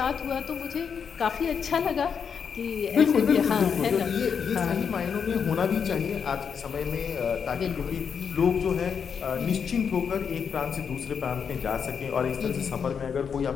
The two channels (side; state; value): right; quieter; 6.8 dB